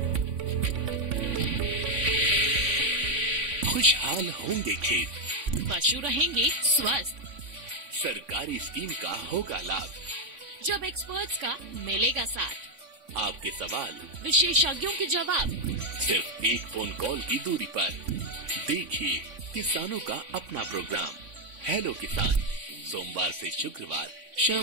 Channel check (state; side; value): late; left; 3.5 ms